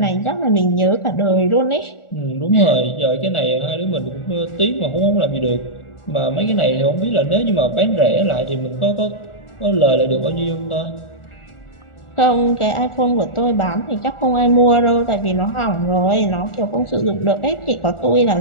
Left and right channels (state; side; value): late; right; 1.4 ms